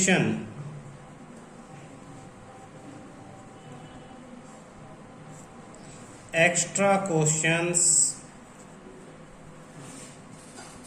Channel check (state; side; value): identical; both; correlation 1.00